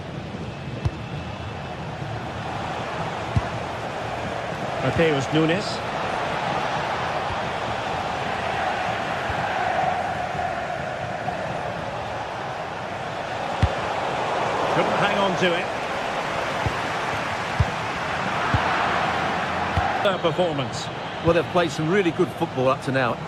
Mateus Nunes. Couldn't hang on to it. Their performance. Well, they've played some really good football up to now.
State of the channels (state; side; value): identical; both; correlation 1.00